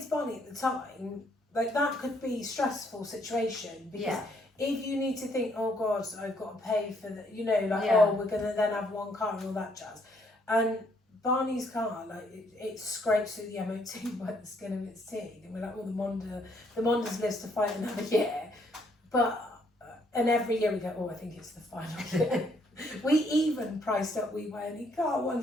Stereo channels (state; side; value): normal; both; correlation 0.69